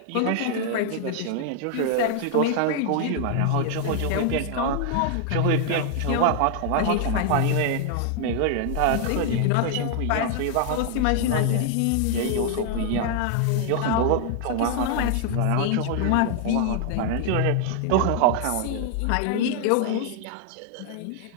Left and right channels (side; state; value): both; different; correlation 0.00